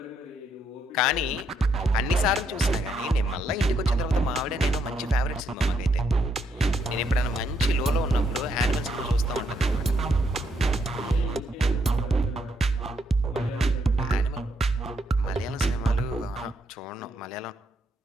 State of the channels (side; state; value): both; normal; correlation 0.75